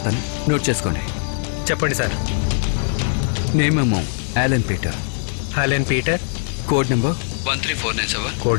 నోట్ చేసుకోండి. చెప్పండి సార్. నేమేమో Allen Peter. Helen Peter. Code number 13497.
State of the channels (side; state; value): right; silent; 65 dB below the other